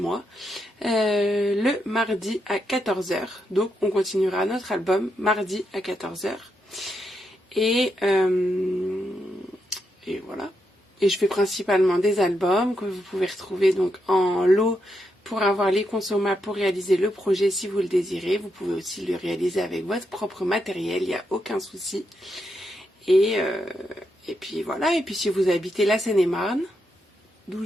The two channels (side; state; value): both; normal; correlation 0.82